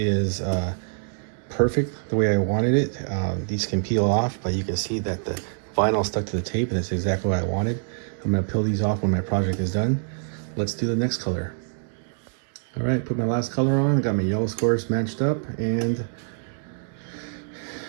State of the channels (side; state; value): left; silent; digital silence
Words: perfect the way I wanted it. These can peel off, but you can see that the vinyl stuck to the tape, and it's exactly what I wanted. I'm gonna peel these off when my project is done. Let's do the next color. All right, put my last color on. Got my yellow squares matched up, and